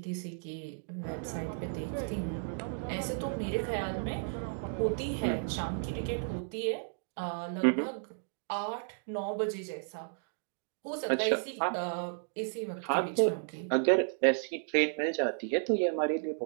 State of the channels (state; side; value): silent; left; digital silence